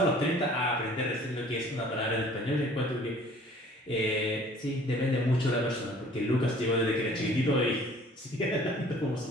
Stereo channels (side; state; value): both; normal; correlation 0.52